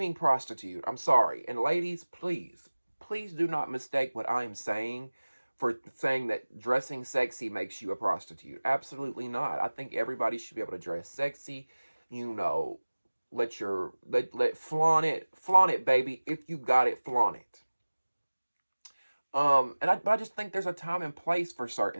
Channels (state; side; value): inverted; both; correlation -1.00